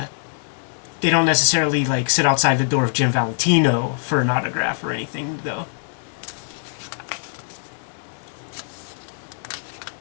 don't necessarily like sit outside the door of Jim Valentino for an autograph or anything, though.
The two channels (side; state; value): right; silent; 64 dB below the other